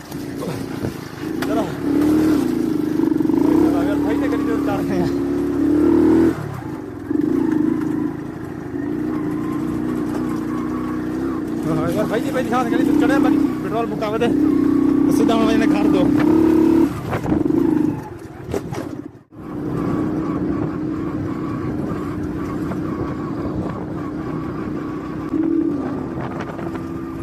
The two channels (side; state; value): both; identical; correlation 1.00